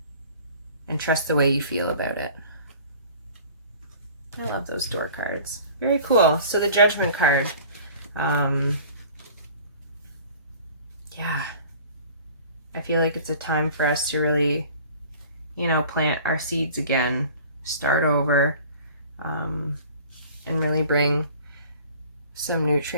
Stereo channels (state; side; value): inverted; both; correlation -0.46